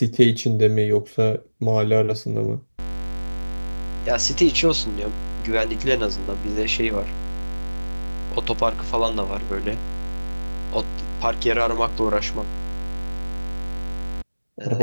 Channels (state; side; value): inverted; both; correlation -1.00